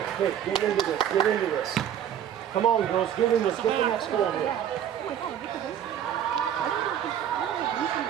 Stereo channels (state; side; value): quieter; left; 9.8 dB